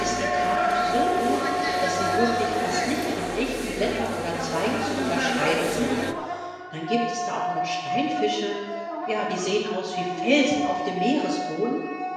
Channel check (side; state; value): both; identical; correlation 1.00